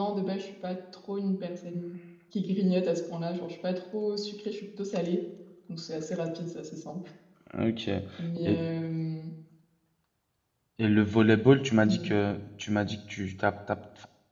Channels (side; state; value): both; identical; correlation 1.00